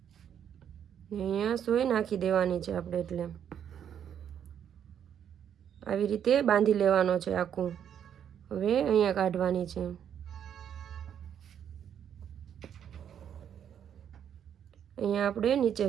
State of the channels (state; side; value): quieter; left; 9.0 dB